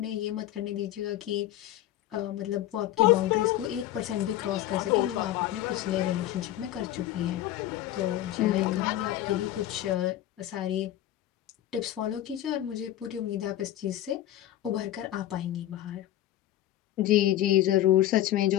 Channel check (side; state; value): right; quieter; 13.3 dB